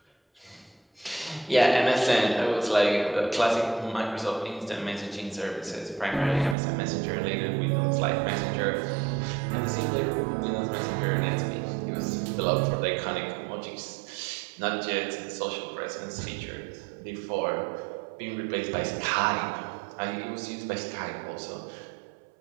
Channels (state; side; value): drops out; left; at 6.6 s